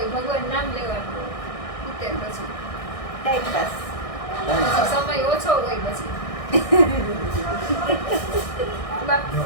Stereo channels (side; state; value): right; late; 1.6 ms